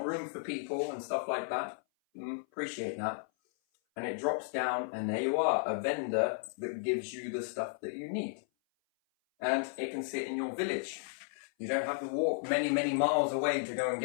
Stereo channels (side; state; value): right; silent; 55 dB below the other